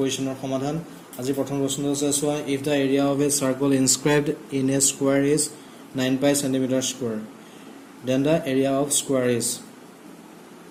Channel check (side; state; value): both; identical; correlation 1.00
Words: সমাধান আজি প্ৰথম প্ৰশ্নটো আছে সোৱা if the area of a circle inscribed in a square is 9 pi centimeter square then the area of square is